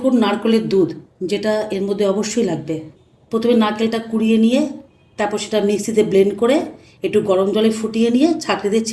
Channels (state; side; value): identical; both; correlation 1.00